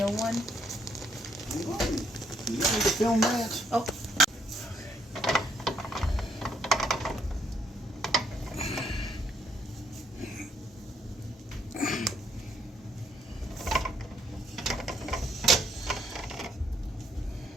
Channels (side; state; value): both; normal; correlation 0.70